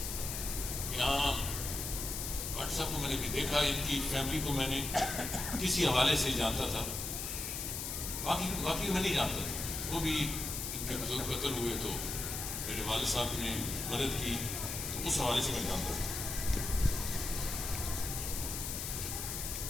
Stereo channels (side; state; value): left; noise; hiss, 4 dB below the sound